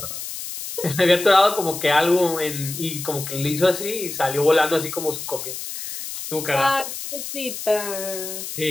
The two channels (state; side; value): noise; left; hiss, 8 dB below the sound